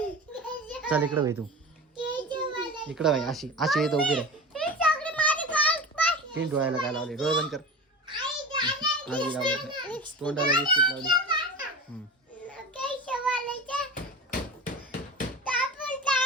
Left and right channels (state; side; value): normal; both; correlation 0.30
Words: चल इकडे भाई, तू इकडे भाई. अशी अशी येतं उभी राह. तीन डोळ्याला काय लावले, डोळे बंद कर. तोंडाला लिपस्टिक लावली.